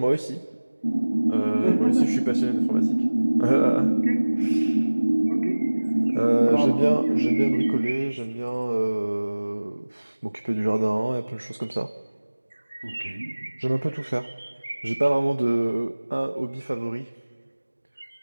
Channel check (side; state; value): both; inverted; correlation -1.00